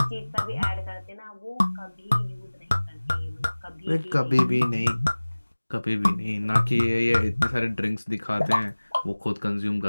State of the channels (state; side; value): inverted; both; correlation -1.00